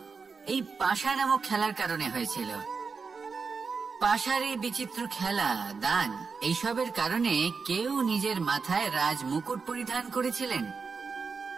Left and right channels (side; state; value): left; quieter; 5.0 dB